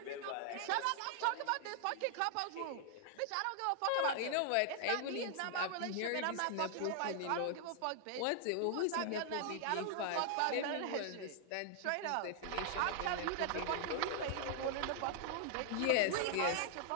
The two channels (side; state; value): both; different; correlation 0.00